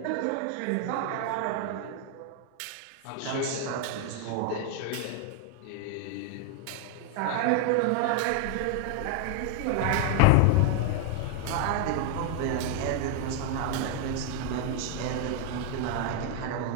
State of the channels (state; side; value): different; both; correlation 0.00